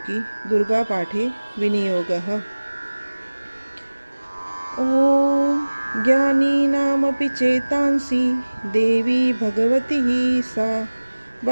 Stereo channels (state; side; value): inverted; both; correlation -1.00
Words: दुर्गा पाठे विनियोगः। ओम ज्ञानीनामपि चेतांसि देवी भगवती सा